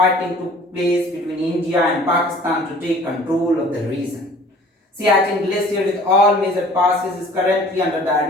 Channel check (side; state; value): both; normal; correlation 0.49